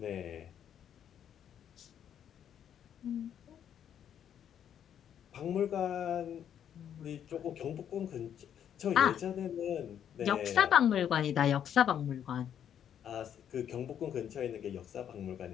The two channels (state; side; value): quieter; right; 9.3 dB